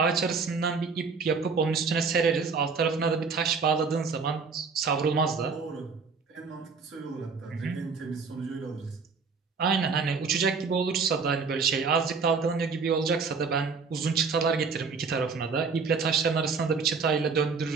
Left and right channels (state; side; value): quieter; left; 5.0 dB